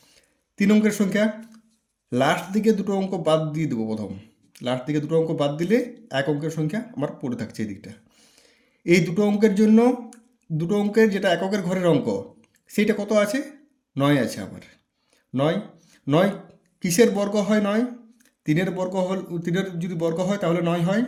3 অঙ্কের সংখ্যা, লাস্ট দিকে দুটো অঙ্ক বাদ দিয়ে দেবো। প্রথম লাস্ট দিকে দুটো অঙ্ক বাদ দিলে 1 অঙ্কের সংখ্যা আমার পড়ে থাকছে এই দিকটা। এই দুটো অঙ্কের জন্য দুটো অঙ্কের যেটা এককের ঘরের অঙ্ক সেইটা কত আছে? 9 আছে আমার। 9 9 কিসের বর্গ হয়? 9 3-এর বর্গ হল, 3-এর যদি বর্গ হয় তাহলে 9 হয়।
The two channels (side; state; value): both; identical; correlation 1.00